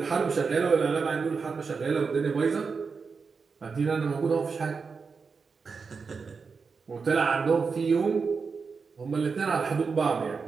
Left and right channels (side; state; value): left; quieter; 5.1 dB